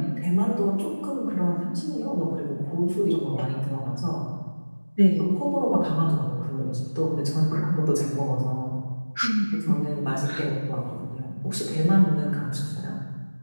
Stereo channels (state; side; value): inverted; both; correlation -1.00